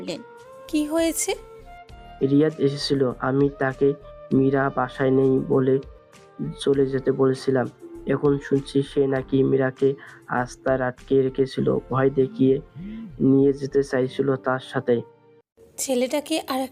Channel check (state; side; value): identical; both; correlation 1.00